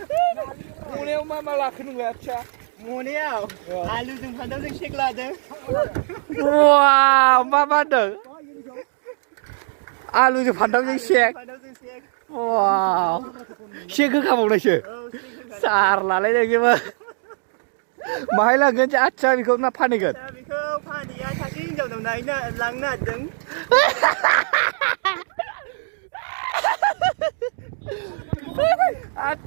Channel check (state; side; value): silent; left; digital silence